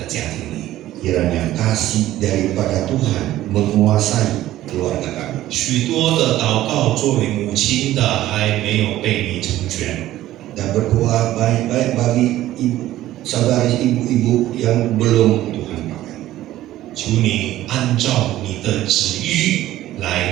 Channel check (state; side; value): quieter; left; 14.5 dB